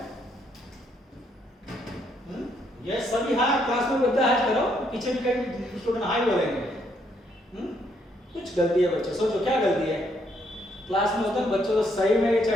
ये सभी हाँ क्लास में बद्दा है करो, पीछे भी कई स्टूडेंट हाई बोलेंगे। कुछ गलती है बच्चे, सोचो क्या गलती है? क्लास में होता है बच्चों को सही में ये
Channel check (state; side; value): normal; both; correlation 0.72